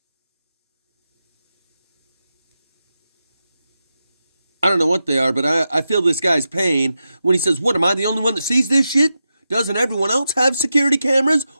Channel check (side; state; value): both; inverted; correlation -0.90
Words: I don't know what they are, but I feel this guy's pain when he says, what, am I the only one that sees this shit? Doesn't everyone else have security cameras?